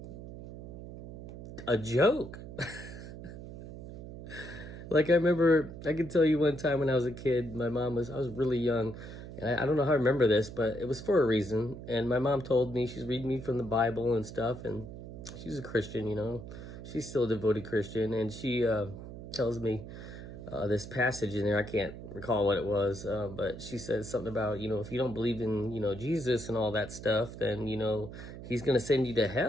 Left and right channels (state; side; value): noise; right; hum, 12 dB below the sound